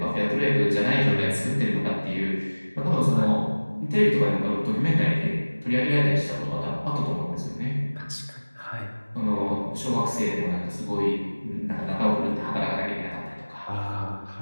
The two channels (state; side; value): inverted; both; correlation -1.00